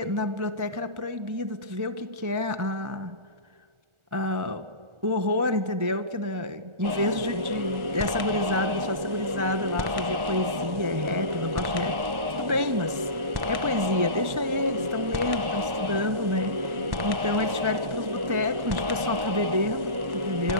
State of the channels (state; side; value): late; left; 1.4 ms